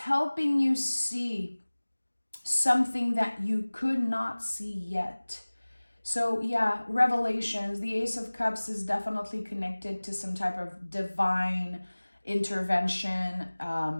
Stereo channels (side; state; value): both; inverted; correlation -1.00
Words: you see something that you could not see yet. So yeah, revelations, the Ace of Cups is definitely connected to some type of divine intervention,